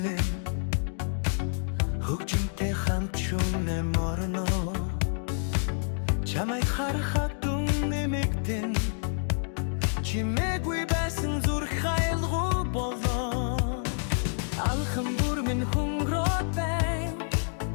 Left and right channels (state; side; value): silent; right; digital silence